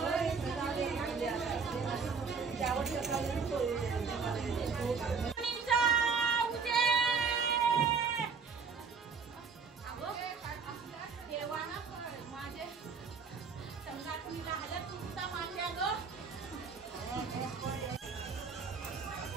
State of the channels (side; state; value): left; quieter; 5.4 dB